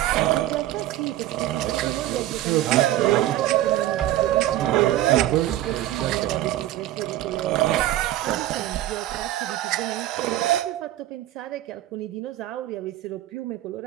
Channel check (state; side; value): quieter; left; 14.0 dB